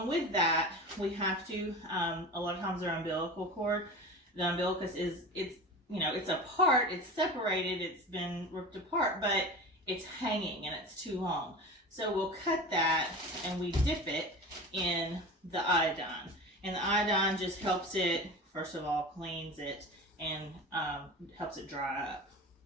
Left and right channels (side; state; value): both; normal; correlation 0.32